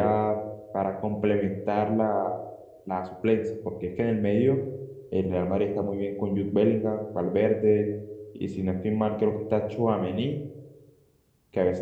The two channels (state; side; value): identical; both; correlation 1.00